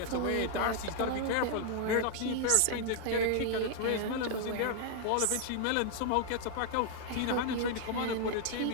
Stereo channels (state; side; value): different; both; correlation 0.00